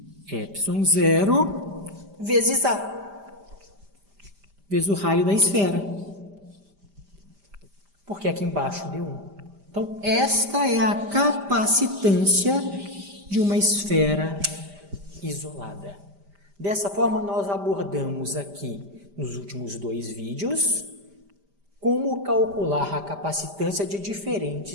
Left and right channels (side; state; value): left; late; 5.0 ms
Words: epsilon 0, vezes A. Vezes o raio da esfera. Porque aqui embaixo deu 1. Então, esta é a capacitância de uma esfera isolada. Dessa forma, nós abordamos aqui, nos últimos 2 vídeos, como calcular a capacitância de